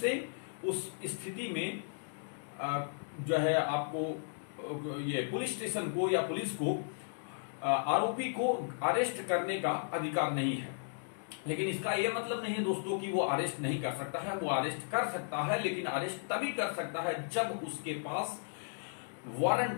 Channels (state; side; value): silent; right; digital silence